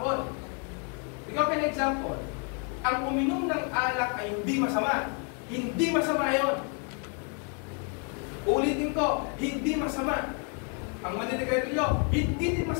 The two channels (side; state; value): right; quieter; 38.5 dB